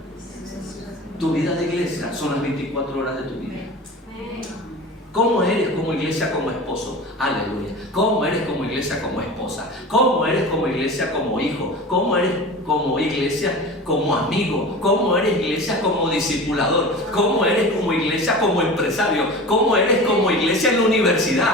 Tu vida de iglesia son las 24 horas de tu vida. ¿Cómo eres como iglesia, como esposo? Aleluya. ¿Cómo eres como iglesia, como esposa? ¿Cómo eres como iglesia, como hijo? ¿Cómo eres como iglesia, como amigo? ¿Cómo eres iglesia, como discipulador? ¿Cómo eres como iglesia, como empresario? ¿Cómo eres como iglesia en la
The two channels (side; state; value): both; normal; correlation 0.34